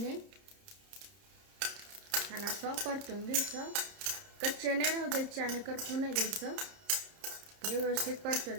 आणि असं परतून घ्यायचं। कच्चे नाही राहू द्यायचे आणि करपू नाही द्यायचं। हे व्यवस्थित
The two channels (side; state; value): left; late; 30 ms